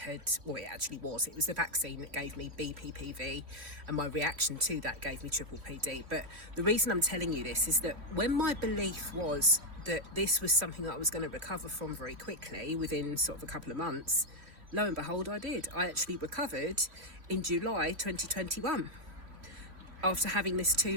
well, it actually was. It was the vaccine that gave me BPPV, and my reaction to that gave me PPPD. But the reason I'm telling you this is that when my belief was that this was something that I was going to recover from very quickly, within sort of a couple of months, lo and behold, I did. I actually recovered in July 2021 after having this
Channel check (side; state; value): left; late; 3.0 ms